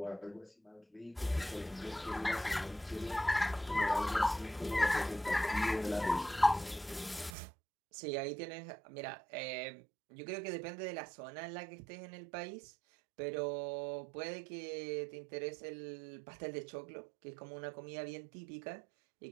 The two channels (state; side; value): drops out; left; at 7.4 s